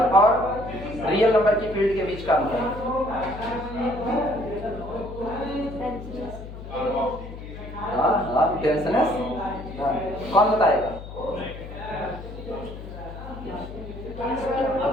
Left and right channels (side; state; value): left; noise; hum, 12 dB below the sound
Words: और रियल नंबर की फील्ड के बीच का अंतर। हाँ, डेंसनेस। कौन बताएगा?